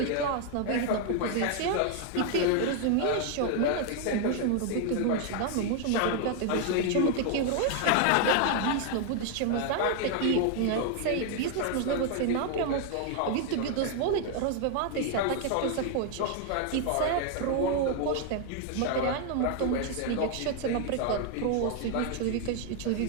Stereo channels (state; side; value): different; both; correlation 0.00